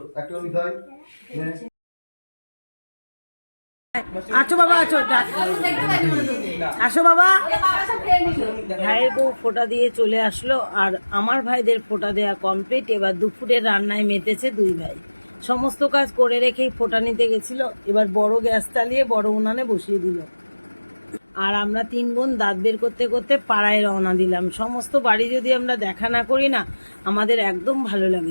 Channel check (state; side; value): inverted; both; correlation -1.00